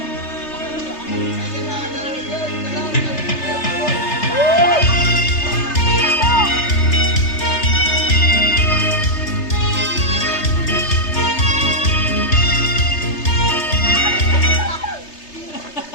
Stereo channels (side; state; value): right; late; 3.3 ms